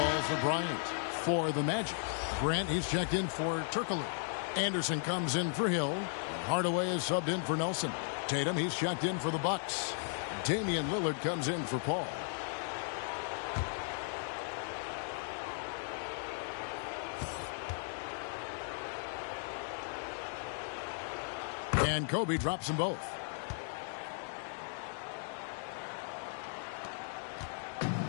for Bryant. For the Magic, Grant, he's checked in for Turkoglu. Anderson comes in for Hill. Hardaway is subbed in for Nelson. Tatum, he's checked in for the Bucks. Damian Lillard comes in for Paul. And Kobe drops them both.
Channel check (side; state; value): right; silent; digital silence